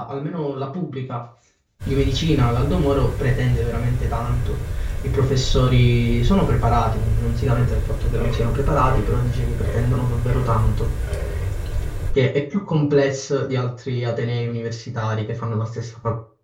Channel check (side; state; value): both; identical; correlation 1.00